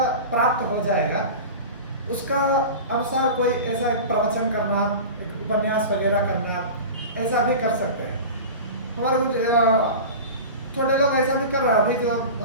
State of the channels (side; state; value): both; inverted; correlation -0.31